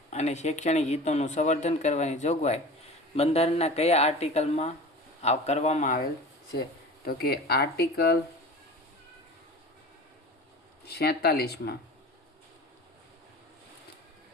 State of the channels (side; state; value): both; normal; correlation 0.37